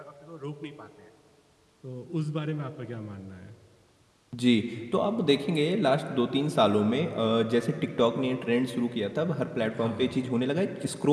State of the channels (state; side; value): identical; both; correlation 1.00